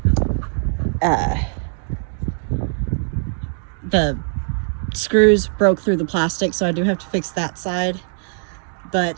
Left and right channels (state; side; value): silent; left; 65 dB below the other